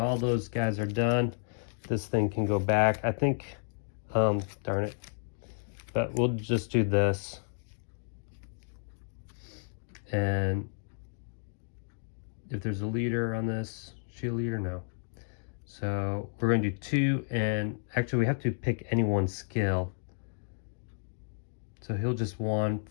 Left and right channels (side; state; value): right; silent; digital silence